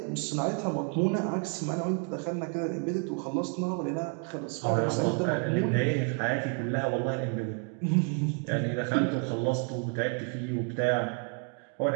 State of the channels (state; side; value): quieter; left; 38.8 dB